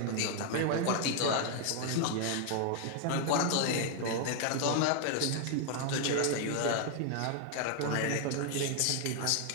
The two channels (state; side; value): different; both; correlation 0.00